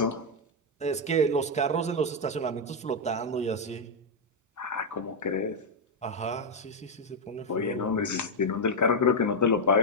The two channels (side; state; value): both; normal; correlation 0.00